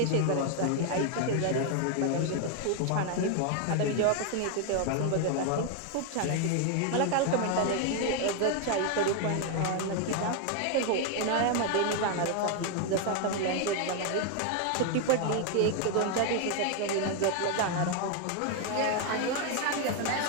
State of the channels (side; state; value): both; different; correlation 0.01